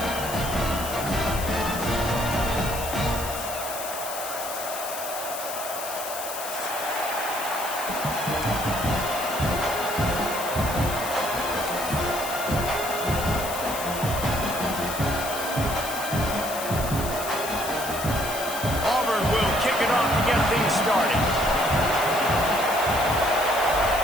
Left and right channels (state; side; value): noise; left; hiss, 8 dB below the sound